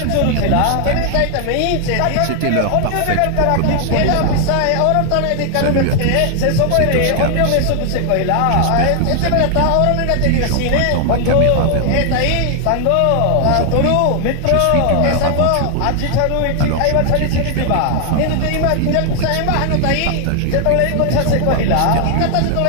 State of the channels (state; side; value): different; both; correlation 0.00